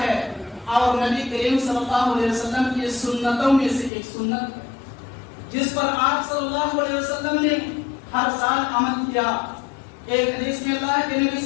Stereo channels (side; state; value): right; drops out; at 3.9 s